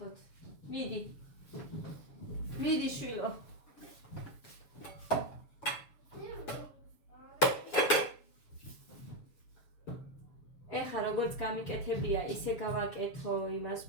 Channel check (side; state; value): right; late; 7.1 ms